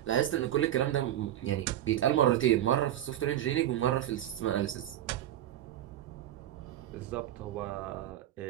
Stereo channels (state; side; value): quieter; left; 12.2 dB